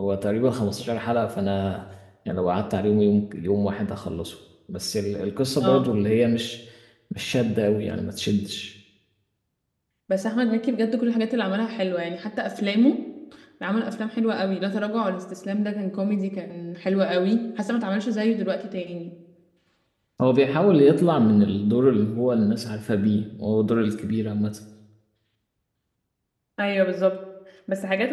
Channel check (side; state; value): both; identical; correlation 1.00